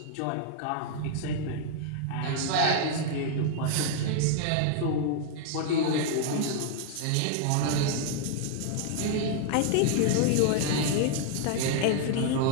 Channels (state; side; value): different; both; correlation 0.00